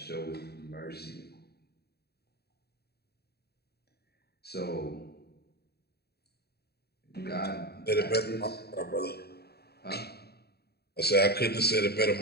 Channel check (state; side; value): late; right; 0.47 ms